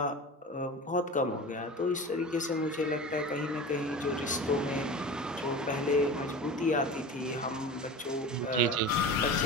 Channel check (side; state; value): both; normal; correlation 0.32